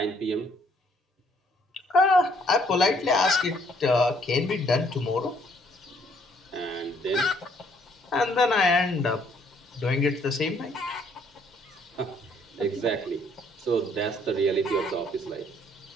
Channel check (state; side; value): normal; both; correlation 0.65